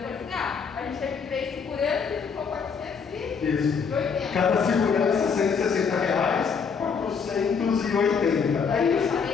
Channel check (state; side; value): quieter; right; 6.0 dB